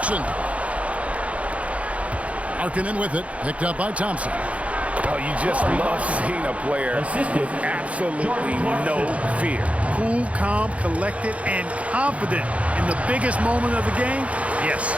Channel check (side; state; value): left; late; 0.064 ms